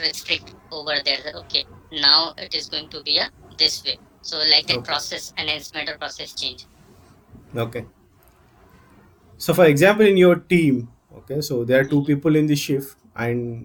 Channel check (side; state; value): both; identical; correlation 1.00